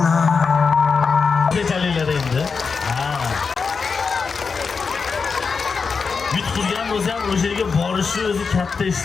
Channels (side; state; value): right; quieter; 5.1 dB